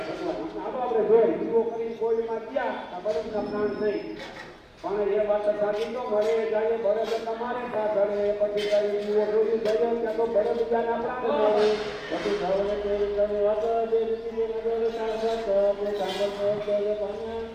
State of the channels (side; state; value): both; identical; correlation 1.00